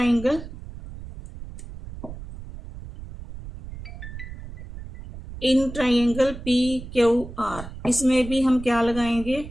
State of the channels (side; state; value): right; noise; rumble, 12 dB below the sound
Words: in triangle P Q R, इसमें भी हम क्या लगाएंगे,